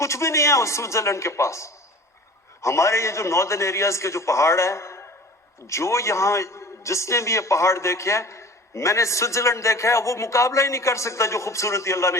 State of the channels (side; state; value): both; normal; correlation 0.42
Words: بھی نہیں ہے اس سوئٹزرلینڈ کے پاس۔ ہمارے یہ جو ناردرن ایریاز کے جو پہاڑ ہیں، جو یہاں جس نے بھی یہ پہاڑ دیکھے ہیں، میں نے سوئٹزرلینڈ دیکھا ہے، وہ مقابلہ ہی نہیں کر سکتا جو خوبصورتی اللہ نے